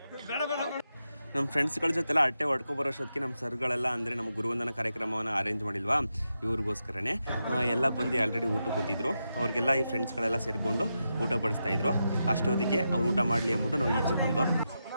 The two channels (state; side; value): inverted; both; correlation -0.87